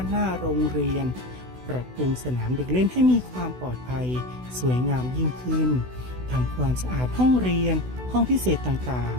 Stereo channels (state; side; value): late; left; 16 ms